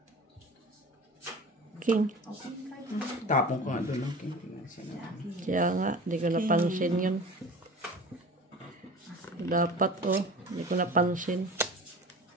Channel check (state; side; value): normal; both; correlation 0.38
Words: King. Tapong ko nga doon lang. King. Kaya nga, di ko napansin yun. Dapat di ko napansin.